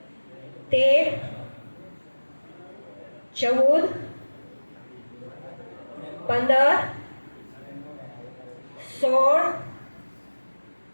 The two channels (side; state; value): both; inverted; correlation -1.00